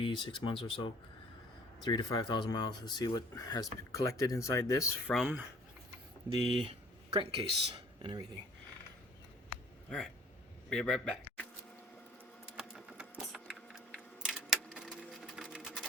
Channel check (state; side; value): normal; both; correlation 0.53